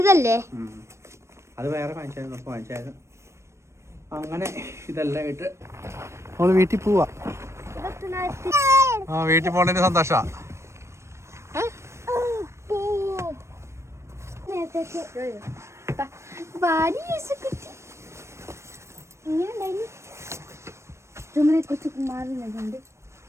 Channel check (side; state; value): left; late; 0.13 ms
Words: അത് വേറെ വാങ്ങിച്ചായിരുന്നു. അങ്ങനെ ഇതെല്ലാം ഇട്ട് നമ്മള് വീട്ടിൽ പോവാ. വീട്ടിൽ പോണതിന് സന്തോഷാ. കുറച്ച് മാറുന്നുണ്ട്